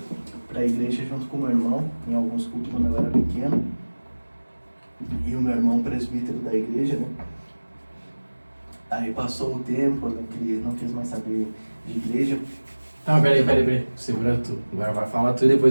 igreja junto com o meu irmão, em alguns cultos quando eu era pequeno. E o meu irmão presbítero da igreja, né? Aí passou o tempo, eu não quis mais saber de igreja. Não, peraí. Segura tu. Agora vai falar tu e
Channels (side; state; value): both; inverted; correlation -1.00